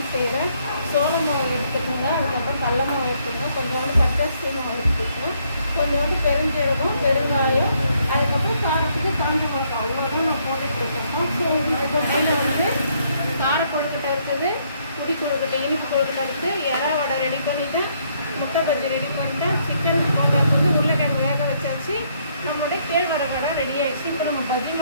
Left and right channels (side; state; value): both; inverted; correlation -0.70